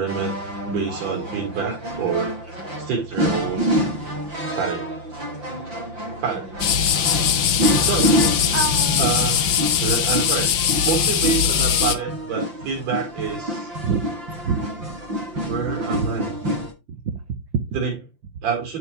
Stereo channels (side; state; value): left; late; 5.8 ms